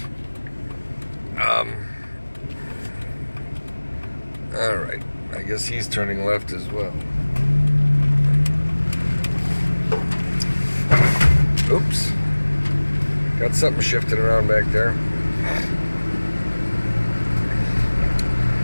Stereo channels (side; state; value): both; inverted; correlation -1.00